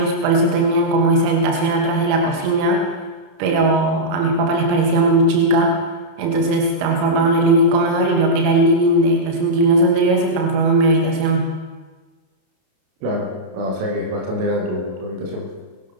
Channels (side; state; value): left; late; 32 ms